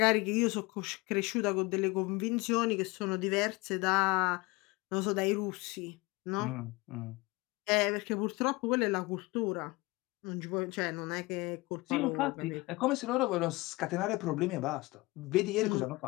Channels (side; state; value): right; quieter; 23.2 dB